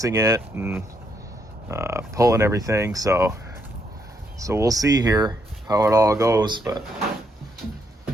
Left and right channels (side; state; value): both; normal; correlation 0.76